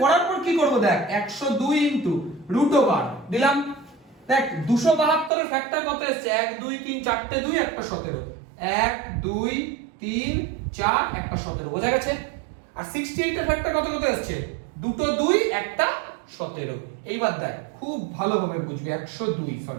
করার পর কি করব দেখ, 102 ইনটু রুট ওভার দিলাম। দেখ 272 এর ফ্যাক্টর কত এসেছে, 1 2 3 4টে 2 একটা 17, 1 2 3 4 একটা 17, বোঝা গেছে। আর 68 এর ফ্যাক্টর কত কত এসেছে, দুটো 2 একটা 17। এইবার দেখ খুব ভালোভাবে বুঝবি, 102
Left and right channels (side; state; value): left; drops out; at 5.3 s